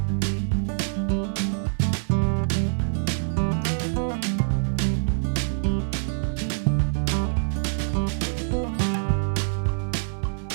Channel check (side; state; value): left; silent; digital silence